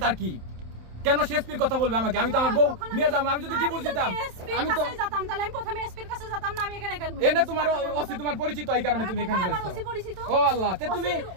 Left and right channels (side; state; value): left; late; 27 ms